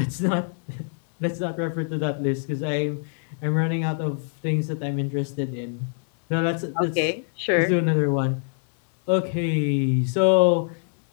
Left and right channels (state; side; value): silent; right; digital silence